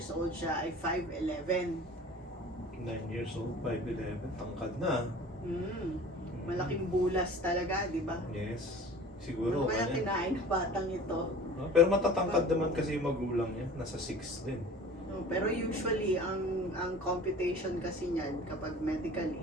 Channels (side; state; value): both; normal; correlation 0.42